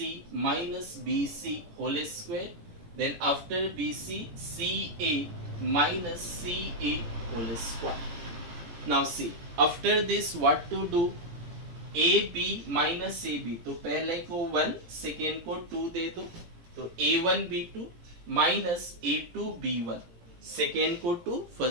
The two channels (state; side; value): late; left; 17 ms